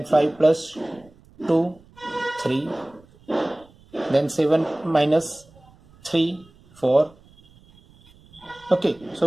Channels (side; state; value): right; noise; rumble, 28 dB below the sound